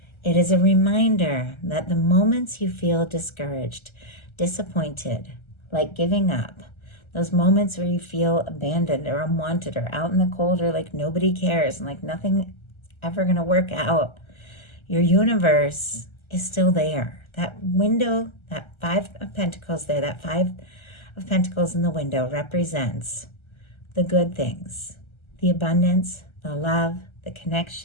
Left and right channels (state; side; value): late; right; 1.3 ms